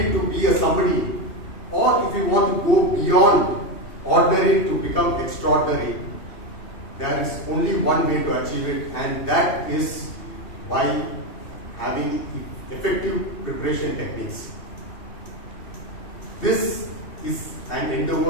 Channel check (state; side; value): late; right; 2.7 ms